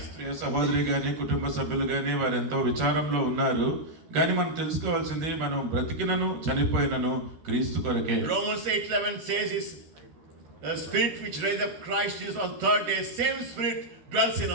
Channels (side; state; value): left; late; 13 ms